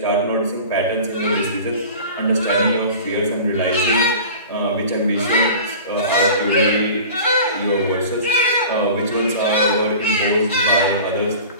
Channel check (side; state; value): both; inverted; correlation -0.38